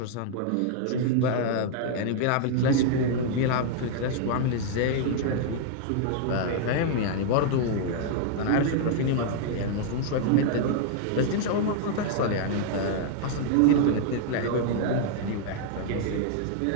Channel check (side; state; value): both; different; correlation -0.01